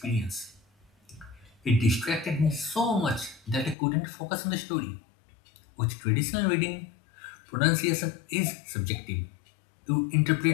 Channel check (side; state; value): right; drops out; at 3.8 s